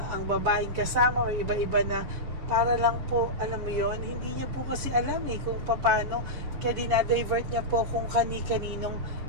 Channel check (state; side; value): late; left; 7.2 ms